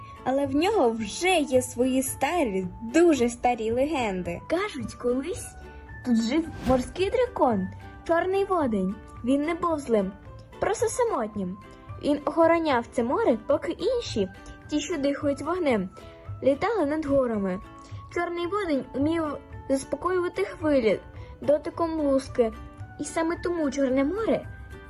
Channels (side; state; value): both; identical; correlation 1.00